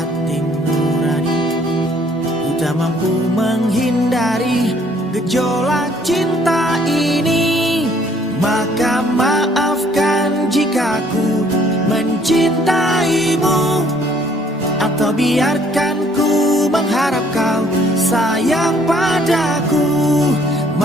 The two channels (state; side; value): normal; both; correlation 0.62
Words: nurani. Ku tak mampu menghindari gejolak cinta ini. Maka maafkan jika ku mencintaimu, atau biarkan ku mengharap kau sayang padaku.